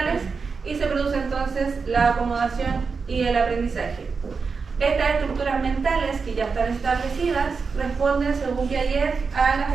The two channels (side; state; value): left; quieter; 5.0 dB